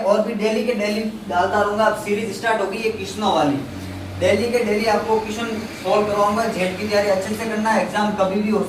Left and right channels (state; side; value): identical; both; correlation 1.00